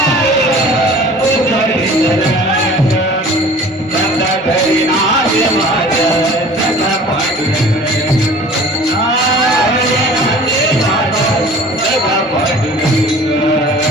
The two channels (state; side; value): normal; both; correlation 0.45